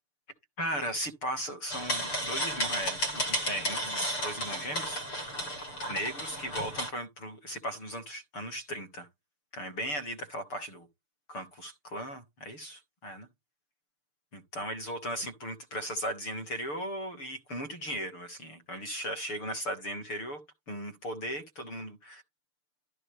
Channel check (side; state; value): right; late; 6.8 ms